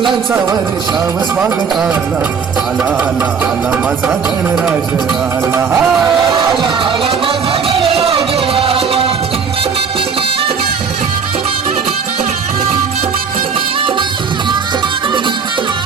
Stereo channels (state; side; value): quieter; left; 6.0 dB